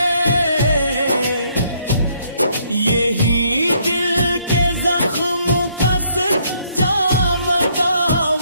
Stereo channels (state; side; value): inverted; both; correlation -0.69